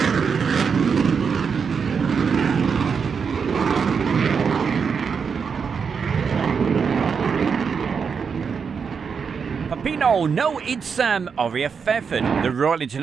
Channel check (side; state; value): left; quieter; 6.1 dB